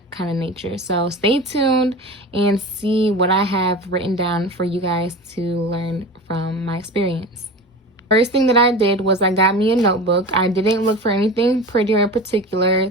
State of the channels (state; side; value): normal; both; correlation 0.31